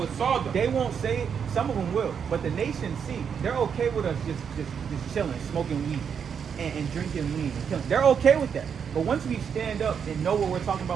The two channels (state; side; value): quieter; left; 7.1 dB